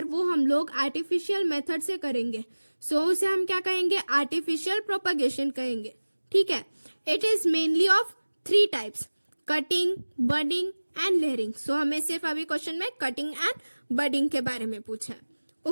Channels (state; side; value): inverted; both; correlation -1.00